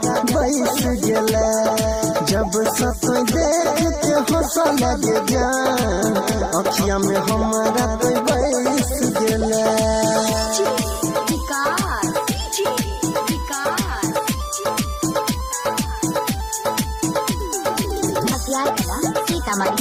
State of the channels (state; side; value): identical; both; correlation 1.00